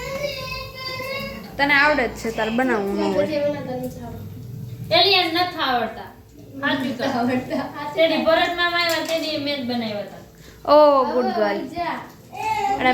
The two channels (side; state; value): both; identical; correlation 1.00